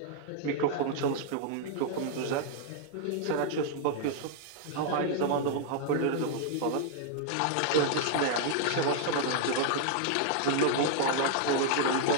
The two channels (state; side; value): different; both; correlation -0.01